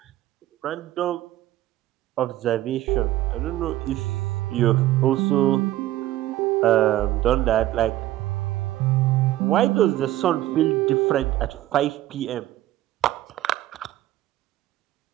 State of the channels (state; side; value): quieter; left; 14.7 dB